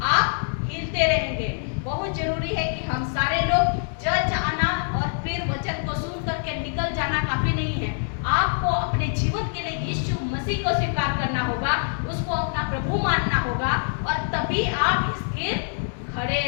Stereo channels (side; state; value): right; silent; digital silence